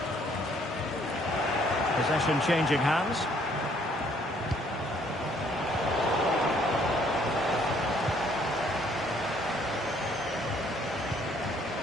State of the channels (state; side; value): normal; both; correlation 0.64